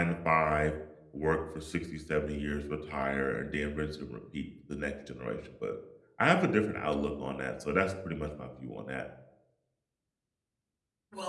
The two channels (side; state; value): both; identical; correlation 1.00